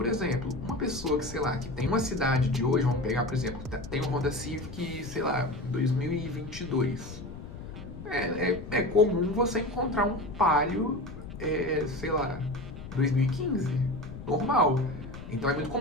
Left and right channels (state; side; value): noise; left; rumble, 12 dB below the sound